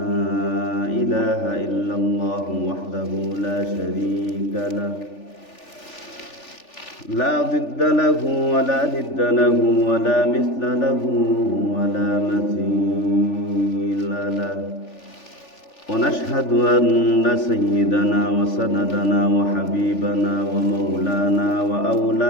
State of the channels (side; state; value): right; late; 3.4 ms